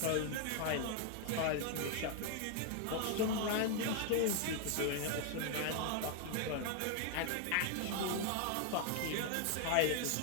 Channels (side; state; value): both; different; correlation 0.00